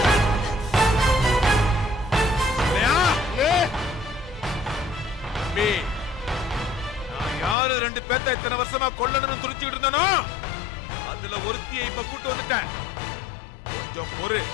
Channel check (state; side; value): drops out; right; at 7.6 s